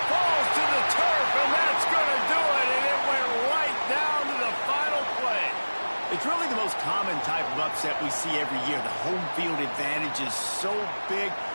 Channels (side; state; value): both; inverted; correlation -1.00